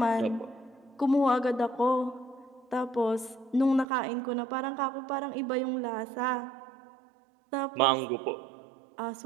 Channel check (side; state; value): left; drops out; at 3.9 s